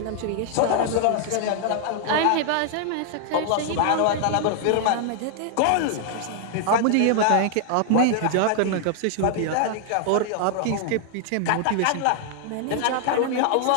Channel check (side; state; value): both; different; correlation 0.00